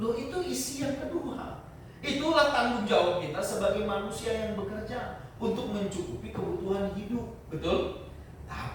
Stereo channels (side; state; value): both; identical; correlation 1.00